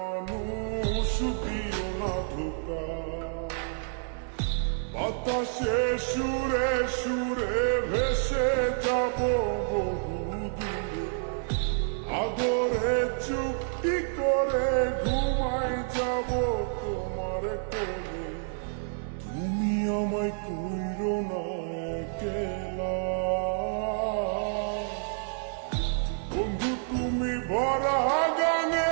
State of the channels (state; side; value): silent; left; digital silence